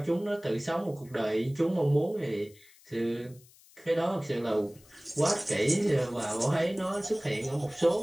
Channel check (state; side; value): noise; left; hiss, 26 dB below the sound